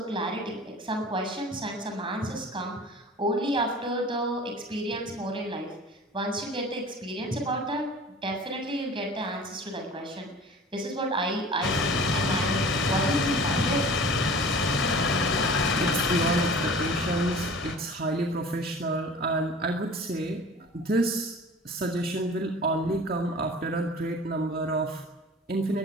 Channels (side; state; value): both; normal; correlation 0.42